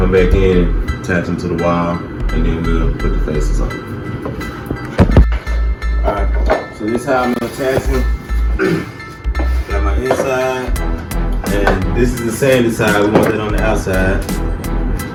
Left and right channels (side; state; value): both; identical; correlation 1.00